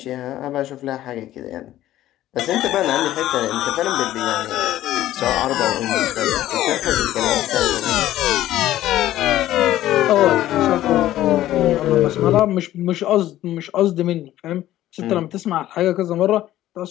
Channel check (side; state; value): right; quieter; 13.9 dB